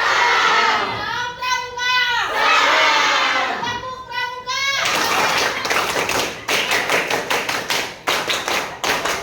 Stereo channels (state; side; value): identical; both; correlation 1.00